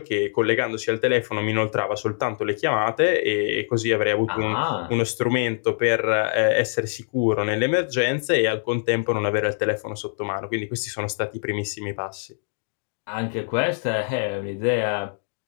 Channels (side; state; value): right; silent; digital silence